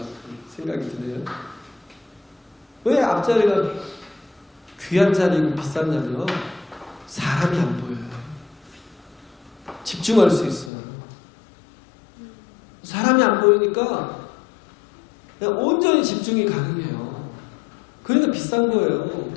생각이 드네요. 왜 앞자리가 귀한 자리고 비쌌냐면 사람이 안 보여요. 집중할 수 있어요. 사람이 안 보이니까 그냥 온전히 집중이 가능해요. 그러니까 비싼 거예요.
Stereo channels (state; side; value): drops out; right; at 10.7 s